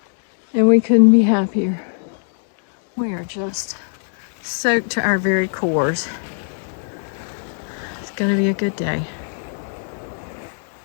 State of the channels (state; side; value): silent; right; 65 dB below the other